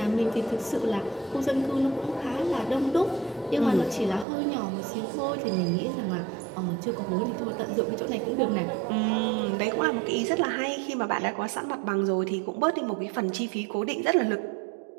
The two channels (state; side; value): drops out; left; at 4.2 s